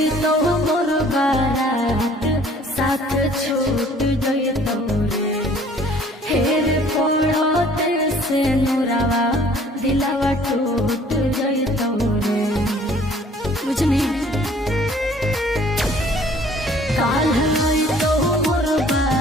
छूट गई तोरे हेर पड़ते से नुरावा दिलावा टूट गई तोरे बुझनी काल तो मोर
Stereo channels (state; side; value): normal; both; correlation 0.55